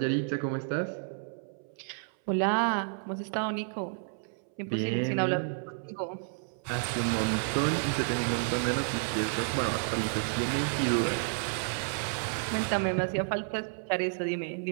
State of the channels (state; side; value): silent; left; 57 dB below the other